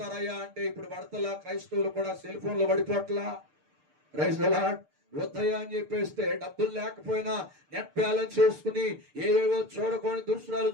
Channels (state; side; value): late; left; 6.7 ms